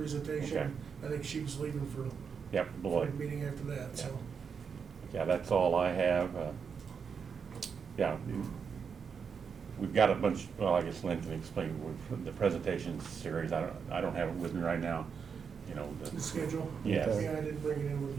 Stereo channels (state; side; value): quieter; left; 6.3 dB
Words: Okay. I think she was leaving for Yep, for Beloit. the meeting after that, so. Yeah, that's all I have. Yeah, we've got a bunch, well, I guess Lynn can explain the presentation series. I don't have it with me right now, you know. The schedule? Yes. Yeah, I didn't bring it in with